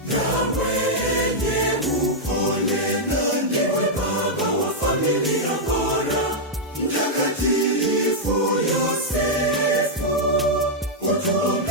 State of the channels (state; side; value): normal; both; correlation -0.05